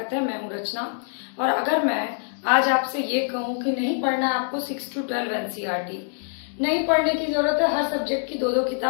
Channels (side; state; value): right; silent; digital silence